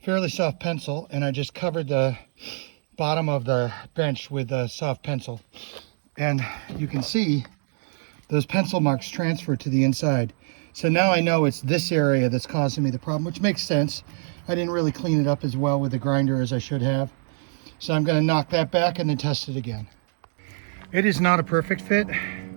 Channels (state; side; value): silent; left; digital silence